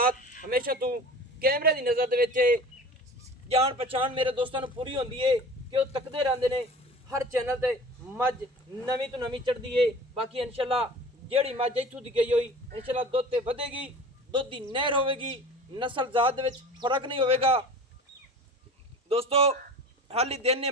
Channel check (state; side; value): normal; both; correlation 0.39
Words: हमेशा तू कैमरे की नज़र दे जान पहचान मेरे दोस्तों पूरी होंदी है कि वो तकते रहते ने हर चैनल ते मझ नवीं तो नवीं चढ़ती है। बाकी इंशाअल्लाह जेड़ी मझ इत्थों दी गई हुई इंशाअल्लाह दुध ते वधेगी, दुध की नहर होगी, नस्ल जात दे विच फर्क नहीं होगा। दोस्तों हाली दिन ने